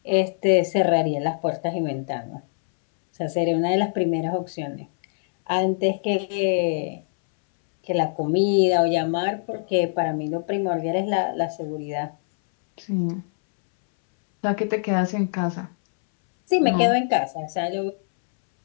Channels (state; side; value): silent; right; 63 dB below the other